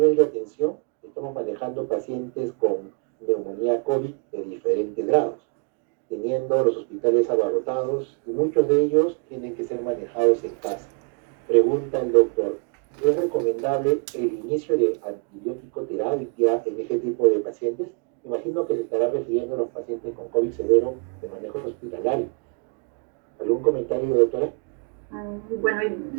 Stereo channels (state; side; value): quieter; left; 37.5 dB